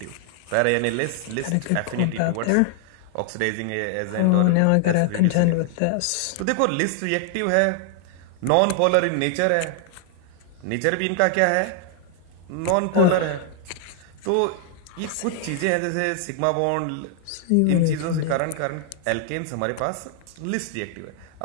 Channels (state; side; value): different; both; correlation 0.00